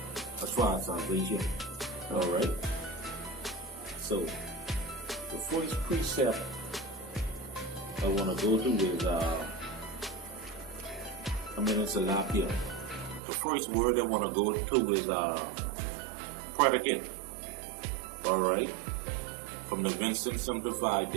Alright? So, the first precept I want to go to is, it's a lot here. The first word I want to go to is predicate. Alright? From the Winston Simplified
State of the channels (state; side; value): drops out; left; at 13.2 s